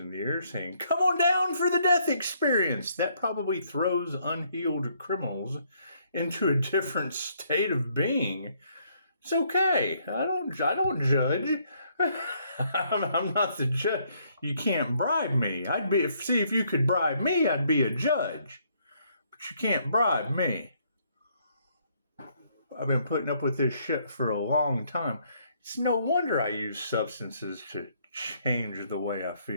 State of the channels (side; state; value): both; inverted; correlation -0.69